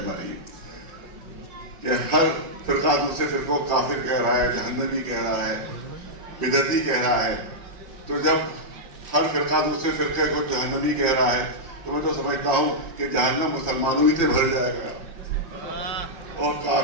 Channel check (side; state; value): left; late; 5.1 ms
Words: کہ ہر فرقہ دوسرے فرقوں کو کافر کہہ رہا ہے, جہنمی کہہ رہا ہے, بدعتی کہہ رہا ہے. تو جب ہر فرقہ دوسرے فرقے کو جہنمی کہہ رہا ہے تو میں تو سمجھتا ہوں کہ جہنم مسلمانوں ہی سے بھر جائے گا اور